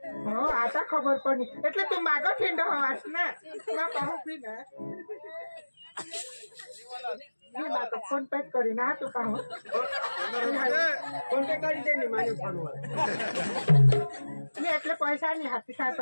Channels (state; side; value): inverted; both; correlation -1.00